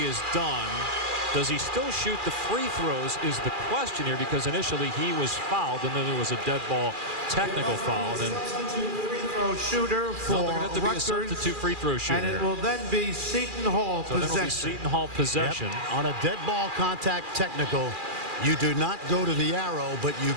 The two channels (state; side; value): late; left; 2.4 ms